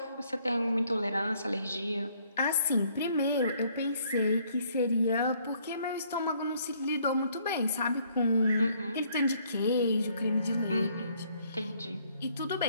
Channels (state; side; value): inverted; both; correlation -0.66